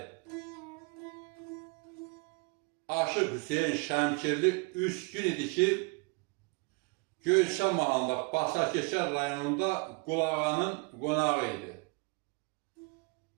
Aşıq Hüseyin Şəmkirli 3 gün idi ki, Göyçə mahallında Basarkeşər rayonunda Qulağanın qonağı idi.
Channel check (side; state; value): left; quieter; 30.4 dB